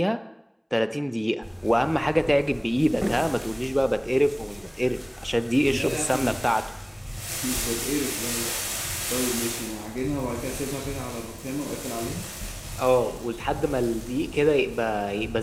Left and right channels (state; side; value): identical; both; correlation 1.00